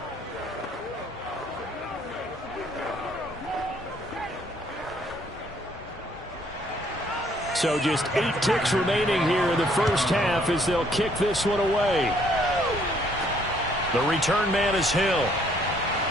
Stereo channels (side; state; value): both; normal; correlation 0.65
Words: So just 8 ticks remaining here in the first half as they'll kick this one away. The return man is Hill.